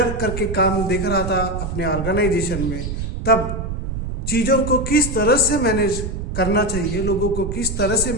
करके काम देख रहा था अपने ऑर्गेनाइजेशन में तब चीज़ों को किस तरह से मैनेज करना चाहिए, लोगों को किस तरह से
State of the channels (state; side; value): noise; right; rumble, 5 dB below the sound